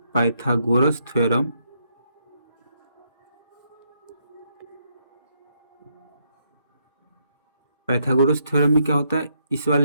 Pythagoras theorem Pythagoras theorem में क्या होता है, इस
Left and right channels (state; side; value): inverted; both; correlation -0.76